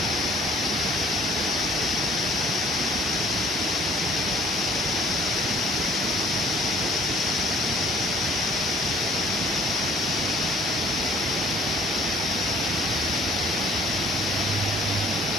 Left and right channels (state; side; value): normal; both; correlation 0.57